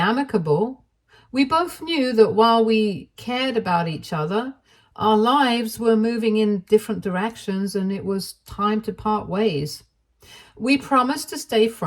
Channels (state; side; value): identical; both; correlation 1.00